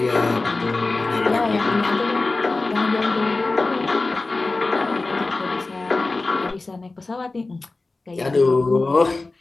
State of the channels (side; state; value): right; quieter; 3.4 dB